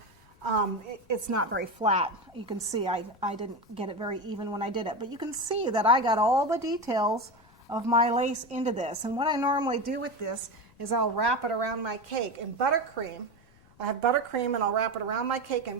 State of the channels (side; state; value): left; noise; rumble, 28 dB below the sound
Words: It's not very flat. You can see I didn't get it very even when I did it, but you can see that I got all the details of my lace into this. And what I normally do with this is I'll wrap it around my cake in buttercream. I have buttercream, and I'll wrap it around my cake